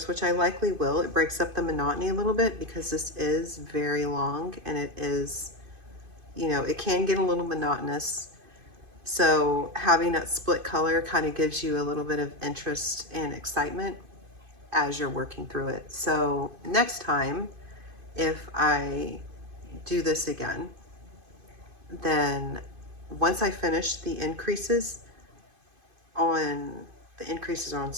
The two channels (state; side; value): late; left; 2.5 ms